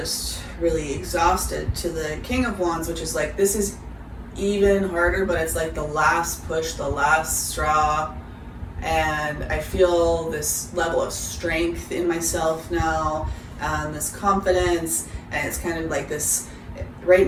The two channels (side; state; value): both; identical; correlation 1.00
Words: really exhausted, to the King of Wands, which is like, this is even harder, but it's like the last push, the last straw. And I feel this level of strength in myself now, this confidence, and it's kind of like this, right